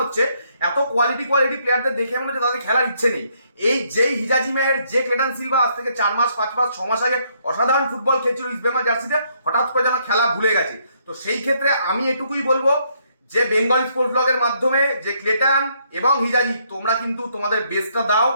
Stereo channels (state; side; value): inverted; both; correlation -0.71